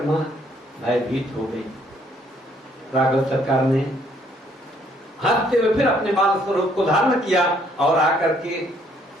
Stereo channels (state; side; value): normal; both; correlation 0.66